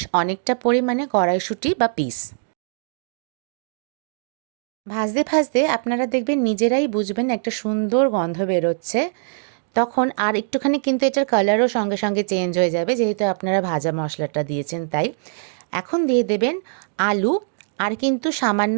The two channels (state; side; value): silent; left; digital silence